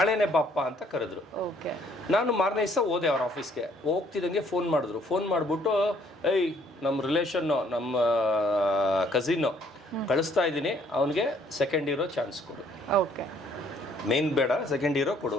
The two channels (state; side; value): normal; both; correlation 0.63